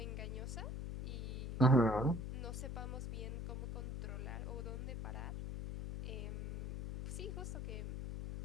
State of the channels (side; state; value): left; noise; hum, 4 dB below the sound